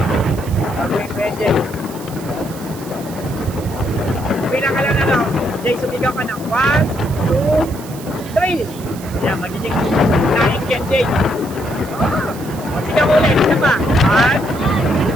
Babaguhin ko yan, Jay. Bilang ka lang ano, Jay, sumigaw ka ng 1, 2, 3. Yan, magiging naing yan, Jay. Oh, sigaw ulit, isa pa. 1,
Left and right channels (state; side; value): noise; right; hiss, 17 dB below the sound